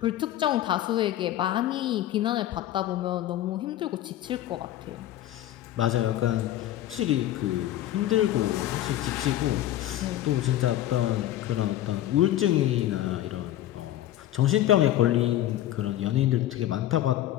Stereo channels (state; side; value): quieter; right; 13.3 dB